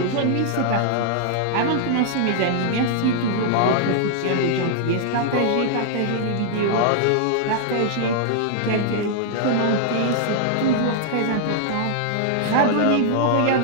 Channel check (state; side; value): different; both; correlation -0.01